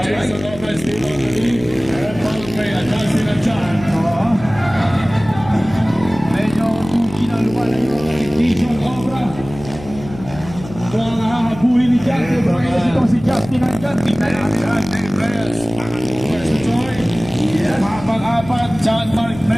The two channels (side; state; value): left; noise; hum, 15 dB below the sound